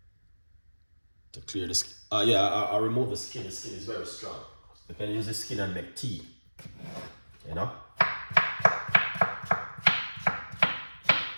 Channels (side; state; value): both; inverted; correlation -1.00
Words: clear the skin? Yeah, I'll remove the skin. The skin is very strong. You can use the skin and make tea, you know.